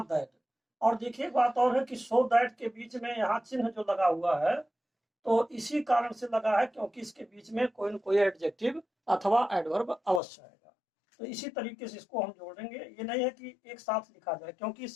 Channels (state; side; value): drops out; right; at 10.2 s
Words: दैट। और देखिए बात और है कि सो दैट के बीच में यहाँ चिन्ह जो लगा हुआ है तो इसी कारण से लगा है क्योंकि इसके बीच में कोई न कोई एडजेक्टिव अथवा एडवर्ब अवश्य आएगा। तो इसी तरीके से इसको हम जोड़ेंगे। ये नहीं है कि एक साथ लिखा जाए, क्योंकि